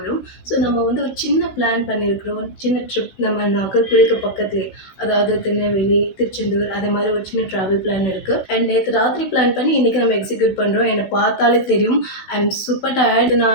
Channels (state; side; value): late; right; 16 ms